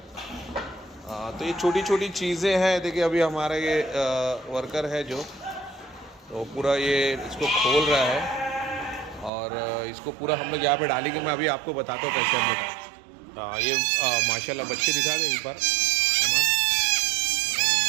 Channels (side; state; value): left; drops out; at 9.3 s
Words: तो ये छोटी छोटी चीज़ें हैं। देखिए अभी हमारा ये वर्कर है जो तो पूरा ये इसको खोल रहा है और इसको पूरा हम लोग यहाँ पे डालेंगे। मैं अभी आपको बताता हूँ कैसे हम लोग ये माशाल्लाह बच्चे दिखा दें एक बार अमन।